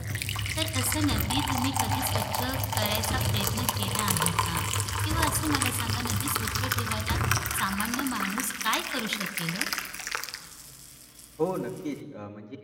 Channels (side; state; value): both; identical; correlation 1.00